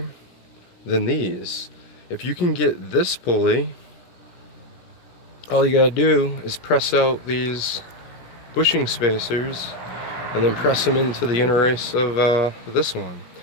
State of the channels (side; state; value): right; late; 17 ms